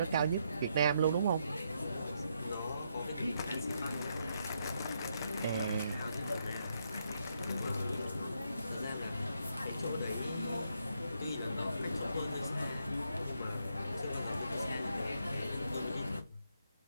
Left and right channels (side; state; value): both; inverted; correlation -0.78